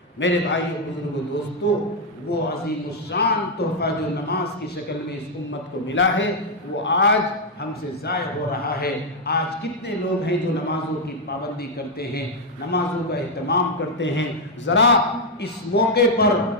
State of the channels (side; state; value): both; normal; correlation 0.00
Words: میرے بھائیو، بزرگوں، دوستو، وہ عظیم الشان تحفہ جو نماز کی شکل میں اس امت کو ملا ہے وہ آج ہم سے ضائع ہو رہا ہے۔ آج کتنے لوگ ہیں جو نمازوں کی پابندی کرتے ہیں، نمازوں کا اہتمام کرتے ہیں۔ ذرا اس موقع پر